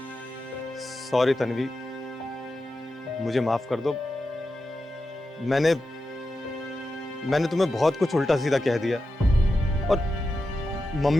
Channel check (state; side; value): normal; both; correlation 0.90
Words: सॉरी तन्वी, मुझे माफ कर दो। मैंने तुम्हें बहुत कुछ उल्टा सीधा कह दिया, और